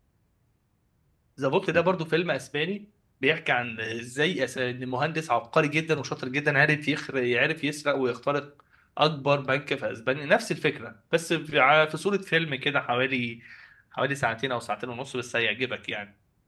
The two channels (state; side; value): identical; both; correlation 1.00